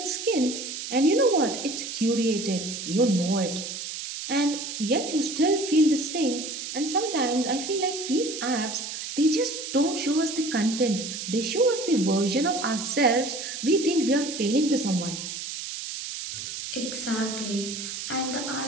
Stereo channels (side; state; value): right; noise; hiss, 7 dB below the sound